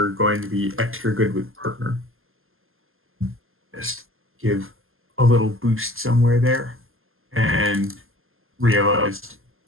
going to be extra good with partner. Just give a little boost somewhere there, and realized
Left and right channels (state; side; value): late; left; 0.60 ms